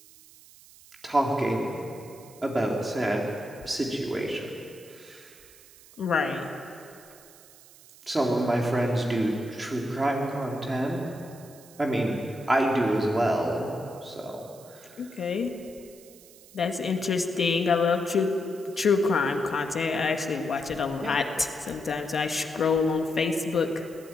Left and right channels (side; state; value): right; noise; hiss, 22 dB below the sound